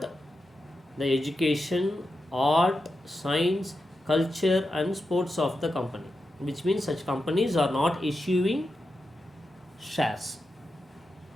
the education, art, science, culture and sports of the company, which means such companies are not issuing shares.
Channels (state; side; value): normal; both; correlation 0.89